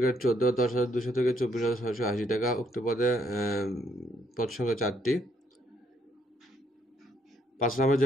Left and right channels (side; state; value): both; normal; correlation 0.71